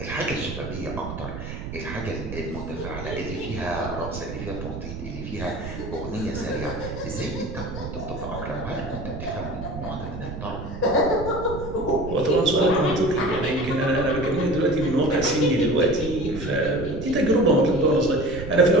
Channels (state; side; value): noise; right; rumble, 8 dB below the sound